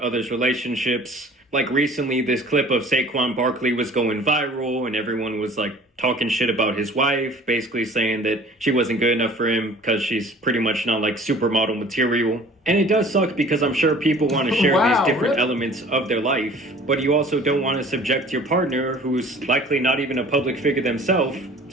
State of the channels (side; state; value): both; normal; correlation 0.48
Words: relationships. Like recently, this clip of Saquon Barkley was going viral, and everyone was like talking shit about his wife, basically saying that she wasn't good enough for him because she's pretty much not like supermodel material. And it does suck because I'm sure people want to share these different elements of their life, but you also don't want to subject your partner, who's likely not even a public figure themselves,